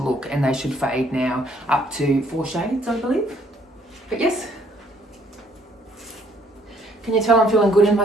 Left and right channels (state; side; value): normal; both; correlation 0.65